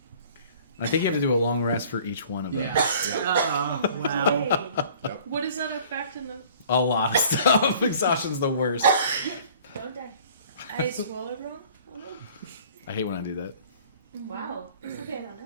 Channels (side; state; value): both; inverted; correlation -0.51